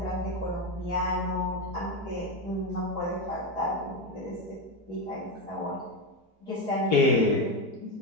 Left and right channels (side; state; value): left; late; 4.6 ms